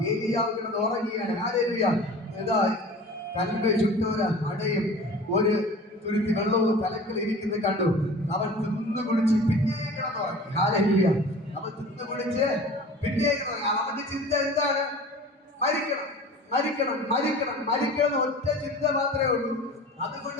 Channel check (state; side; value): normal; both; correlation 0.41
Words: ഏലിയാവ് കിടന്ന് ഉറങ്ങിയാണ്. ഇതാ കൽബ ചുറ്റോര അടയും ഒരു തുരുത്തി വെള്ളവും തലക്കിൽ ഇരിക്കുന്നത് കണ്ടു. അവൻ തിന്നു കുടിച്ച് പിന്നെയും കിടന്നുറങ്ങി. ഹാലേലൂയ. അവൻ തിന്നു കുടിച്ച് പിന്നെയും കിടന്നുറങ്ങി. അവന്റെ ചിന്ത എന്താണ്? മരിക്കണം, മരിക്കണം, മരിക്കണം, മരിക്കണം. ഒറ്റ ചിന്ത മാത്രമേ ഉള്ളൂ.